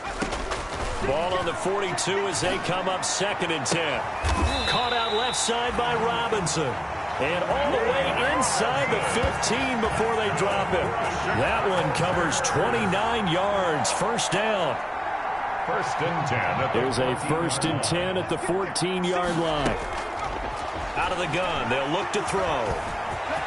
Ball on the 42 as they come up 2nd and 10. Caught out left side by Robinson. And all the way inside the 15 before they drop him. That one covers 29 yards. First down. 1st and 10. There's a 1st and 10 at the 14-yard line. Out of the gun, they'll look to throw.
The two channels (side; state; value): both; identical; correlation 1.00